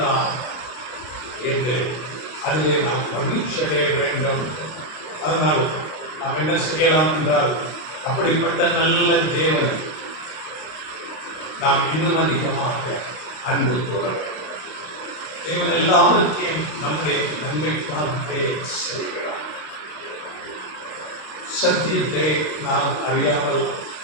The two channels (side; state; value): right; late; 32 ms